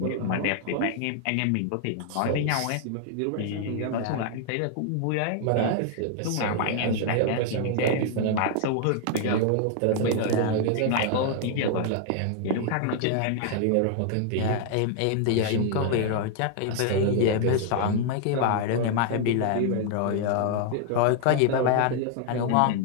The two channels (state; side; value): different; both; correlation 0.00